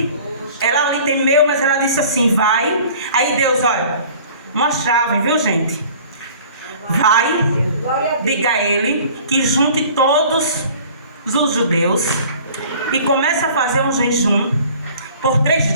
Ela ali temeu, mas ela disse assim: vai. Aí Deus, olha, uma chave, viu gente? Vai, diga a ele que junte todos os judeus e comece a fazer um jejum por 3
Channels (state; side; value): inverted; both; correlation -0.48